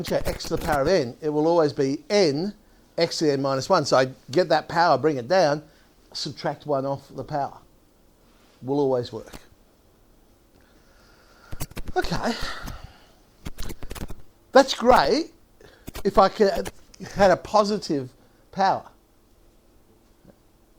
x to the power of n, it will always be n x to the n minus 1. So I get that power, bring it down, subtract 1 off the power. Will always work. Okay. That's great if I had a positive power.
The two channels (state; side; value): identical; both; correlation 1.00